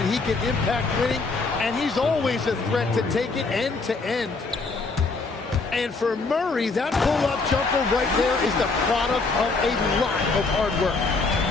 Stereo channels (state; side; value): quieter; right; 3.9 dB